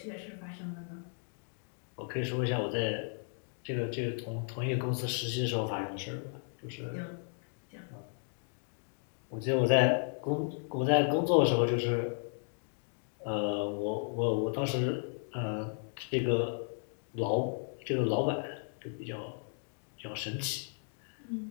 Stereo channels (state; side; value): silent; right; 55 dB below the other